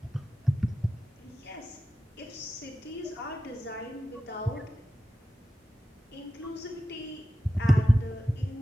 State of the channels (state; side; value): normal; both; correlation 0.93